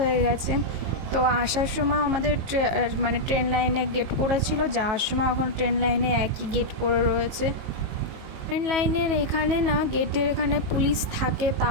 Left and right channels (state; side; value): late; left; 19 ms